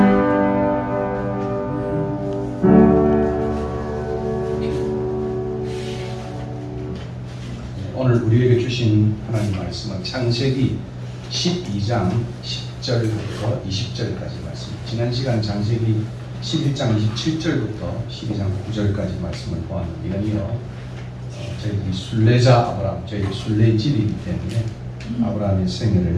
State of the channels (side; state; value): both; identical; correlation 1.00